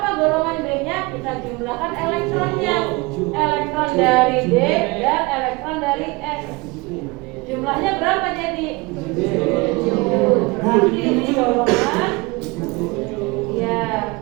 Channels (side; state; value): left; quieter; 24.8 dB